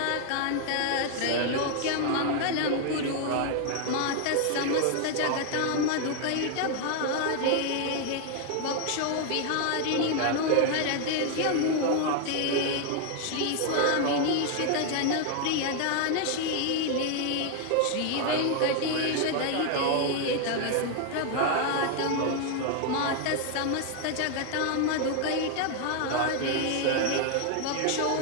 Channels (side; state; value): both; different; correlation 0.01